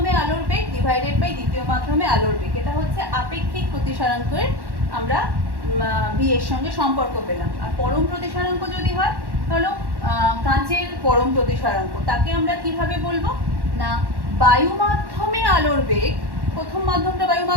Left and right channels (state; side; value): late; left; 1.1 ms